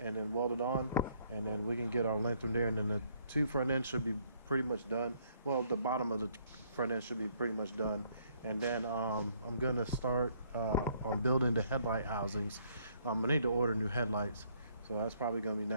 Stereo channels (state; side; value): inverted; both; correlation -0.66